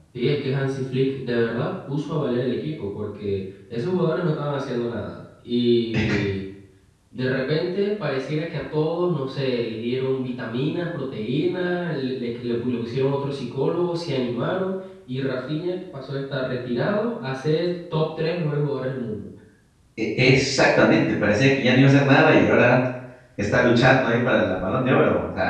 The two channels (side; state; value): both; identical; correlation 1.00